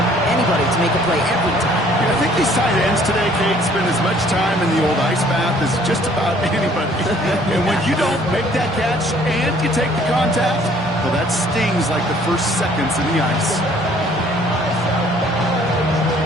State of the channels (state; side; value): normal; both; correlation 0.58